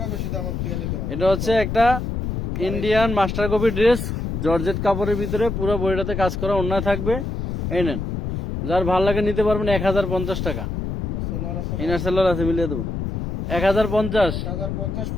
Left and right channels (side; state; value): left; noise; rumble, 3 dB below the sound